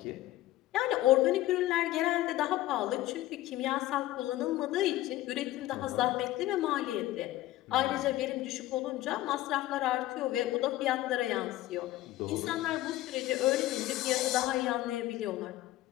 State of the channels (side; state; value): right; quieter; 15.8 dB